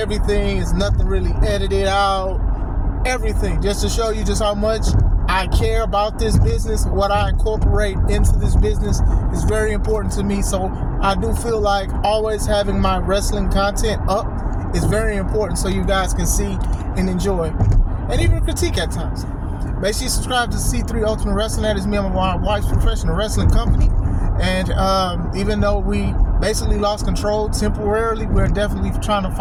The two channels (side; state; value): both; identical; correlation 1.00